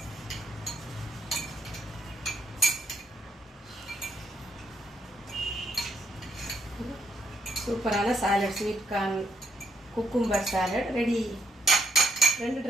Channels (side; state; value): both; normal; correlation 0.75